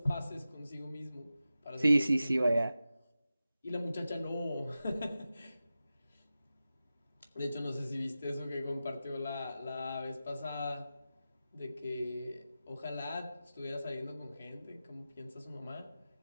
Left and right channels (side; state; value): both; inverted; correlation -0.93